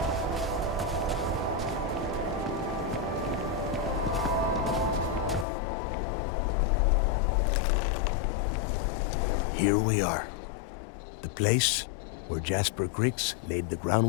Here we are. The place where Jasper Griggs laid the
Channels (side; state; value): right; drops out; at 5.5 s